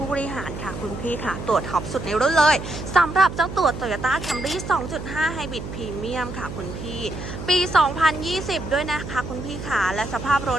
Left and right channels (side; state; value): right; noise; hum, 9 dB below the sound